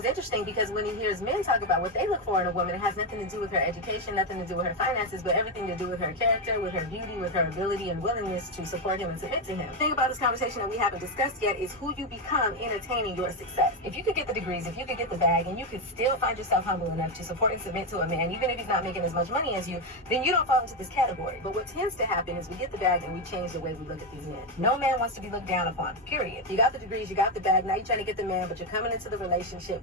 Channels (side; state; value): both; normal; correlation 0.08